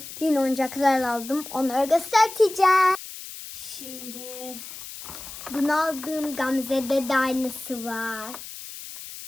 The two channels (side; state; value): left; noise; hiss, 12 dB below the sound